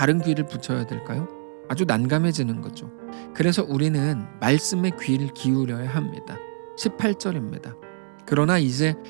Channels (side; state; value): left; silent; 62 dB below the other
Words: 귀를 붙여야 될까요? 아주 난감해지는 거죠. 그래서 우리는 말씀에 귀를 기울여야 합니다. 18절입니다. 그러나 이제